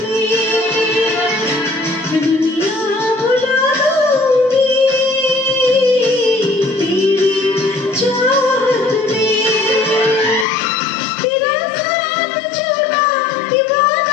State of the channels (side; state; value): right; drops out; at 10.5 s